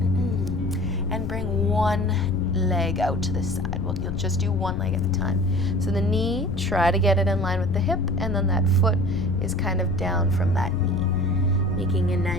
and bring one leg out to the side. Well, you'll just do one leg at a time. So the knee, try to get it in line with the hip, and then that foot is kind of down from that knee, making a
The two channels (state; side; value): noise; left; rumble, 5 dB below the sound